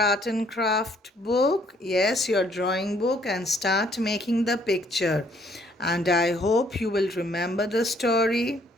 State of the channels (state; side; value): normal; both; correlation 0.64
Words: and craft book, yes, your drawing book, and start making the picture. And I hope you will remember the story.